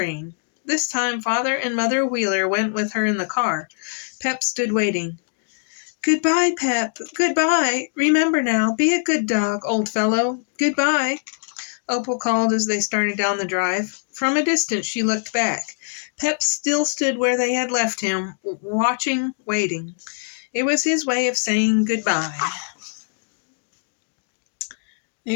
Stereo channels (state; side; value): silent; right; digital silence